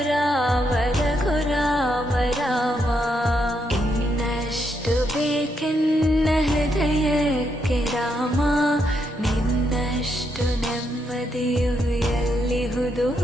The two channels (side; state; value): both; normal; correlation 0.79